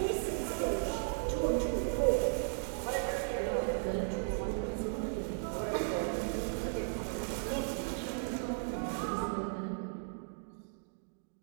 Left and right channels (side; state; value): left; silent; digital silence